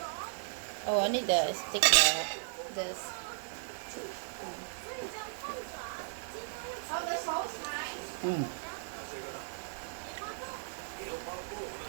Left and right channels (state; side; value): silent; left; 54 dB below the other